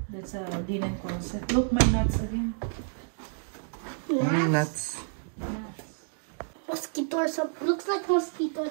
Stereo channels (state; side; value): silent; left; digital silence